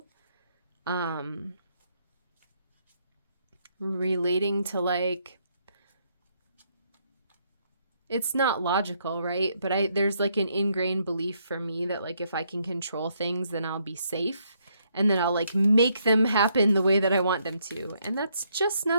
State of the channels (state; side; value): inverted; both; correlation -0.73